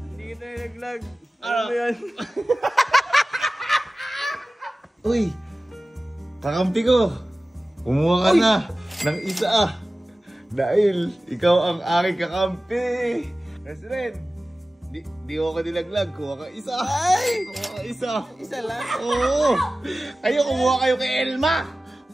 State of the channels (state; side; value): normal; both; correlation 0.96